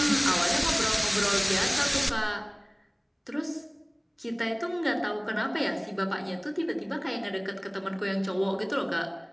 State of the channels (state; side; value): identical; both; correlation 1.00